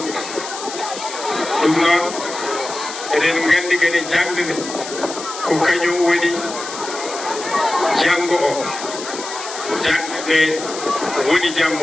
ɗum noon eɗen gandi kadi jangde ko kañum woni janngo o jangde woni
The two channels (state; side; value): noise; left; hiss, 10 dB below the sound